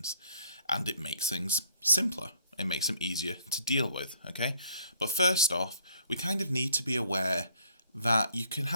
and it makes things simpler. It makes them easier to deal with, okay? But first off, we kind of need to be aware that you can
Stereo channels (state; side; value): inverted; both; correlation -0.61